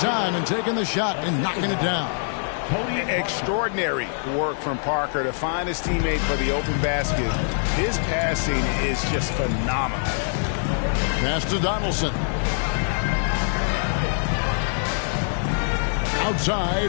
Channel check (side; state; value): right; silent; 55 dB below the other